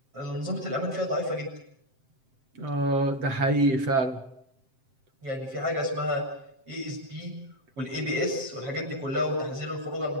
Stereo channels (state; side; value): late; left; 7.6 ms